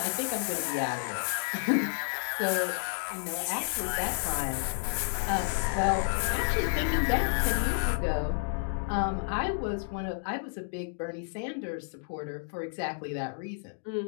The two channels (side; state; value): right; silent; digital silence